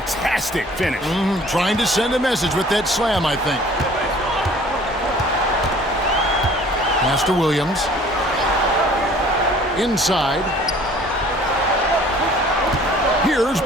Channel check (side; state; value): both; normal; correlation 0.51